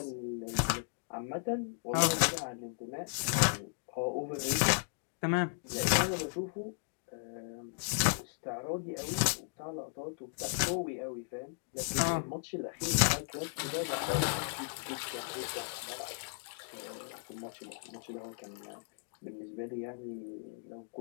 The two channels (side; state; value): right; silent; digital silence